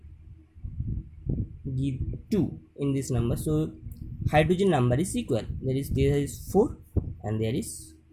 give 2 in this number, so hydrogen number is equal. There is 4 and there is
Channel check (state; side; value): identical; both; correlation 1.00